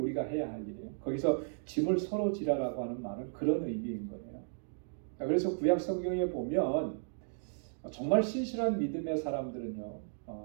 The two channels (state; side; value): silent; left; digital silence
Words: 해야 할 일이에요. 거기서 짐을 서로 지라라고 하는 말은 그런 의미인 거예요. 그래서 구약 성경에 보면 정말 신실한 믿음의 사람들은요,